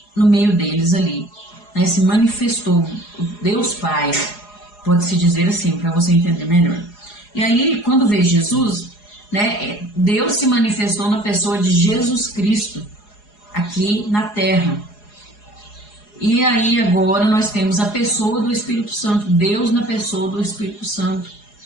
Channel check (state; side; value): late; right; 4.8 ms